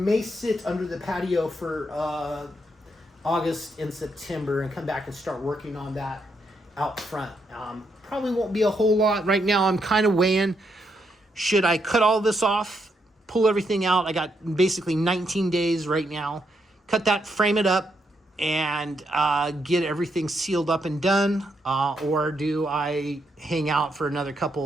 sit under the patio for August and September and come back and start working on that out front. Probably won't be a whole lot. Right now I'm kind of weighing, should I cut all this off, pull everything out? I got basically 19 days right now. Cut that, frame it up, and get everything sealed up and done, or do I hang out for another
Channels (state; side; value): normal; both; correlation 0.79